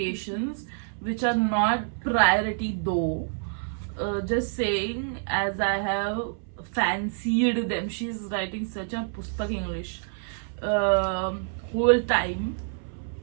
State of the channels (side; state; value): left; silent; 59 dB below the other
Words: which are not priority though. Just saying, as I have fancied them. She's writing such a pustak English. Whole time.